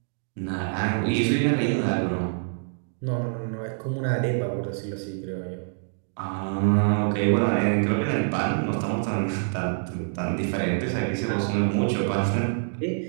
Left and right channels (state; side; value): silent; left; digital silence